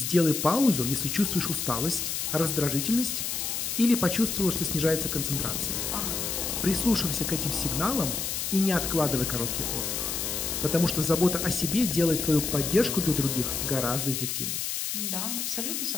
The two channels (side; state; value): left; noise; hiss, 2 dB below the sound